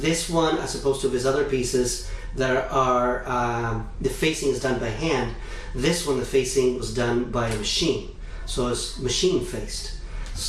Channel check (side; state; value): both; identical; correlation 1.00